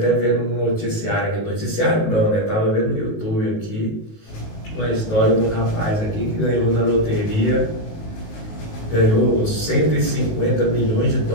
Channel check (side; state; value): right; late; 19 ms